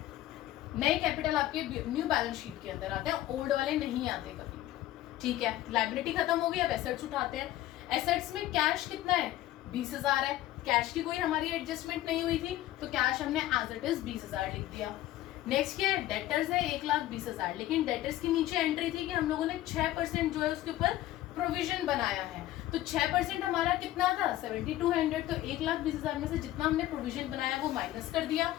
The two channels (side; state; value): right; quieter; 14.6 dB